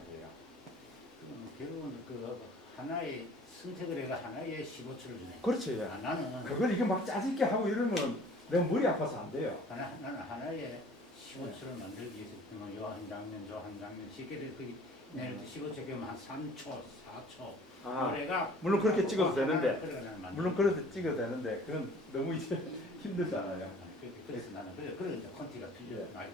결국은 그 하나의 선택을 해가 하나의 15초를 주네. 그렇죠. 예. 나는 그걸 이게 막 짜집게 하고 이러면 내가 머리 아파서 안 돼요. 나는 하나의 15초를 만들기 위해서 요한 장면, 저 한 장면 쉽게 그 내일 15초 그러면 한 3초, 4초. 그래가 물론 그렇게 찍어도 되는데, 물론 물론 그렇게 찍어도 되는데 그건 너무 이제 힘들잖아요. 그래서 나는 그래 이제 콘티가 예. 많이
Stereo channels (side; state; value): both; normal; correlation 0.50